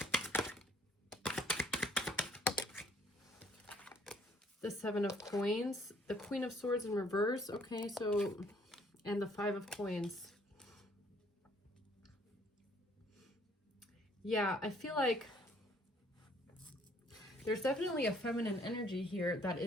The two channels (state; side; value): normal; both; correlation 0.62